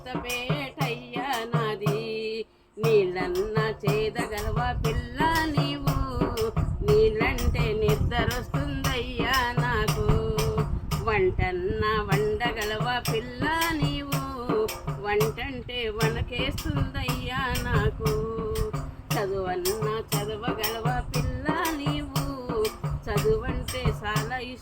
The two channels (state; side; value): identical; both; correlation 1.00